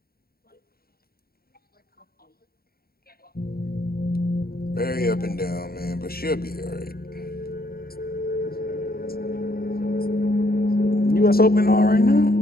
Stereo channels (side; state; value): right; late; 0.44 ms